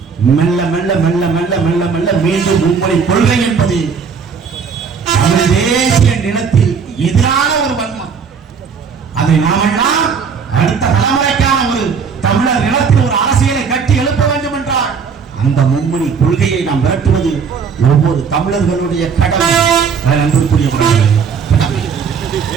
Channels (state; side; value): quieter; left; 6.0 dB